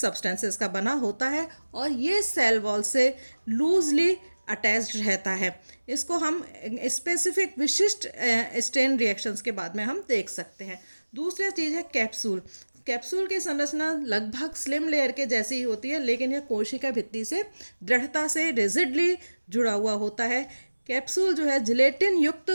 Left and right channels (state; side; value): inverted; both; correlation -1.00